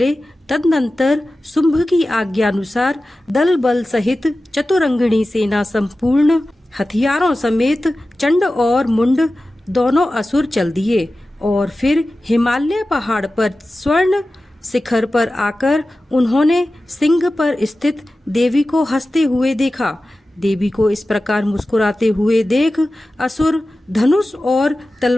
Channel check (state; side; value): normal; both; correlation 0.95